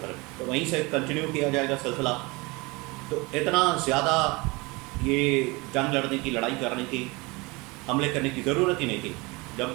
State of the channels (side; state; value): left; quieter; 25.3 dB